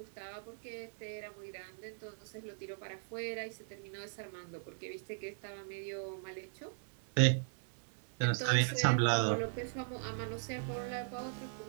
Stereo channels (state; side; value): silent; left; digital silence